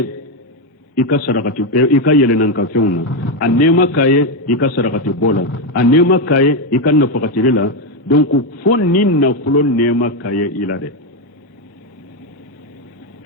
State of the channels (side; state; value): both; normal; correlation 0.06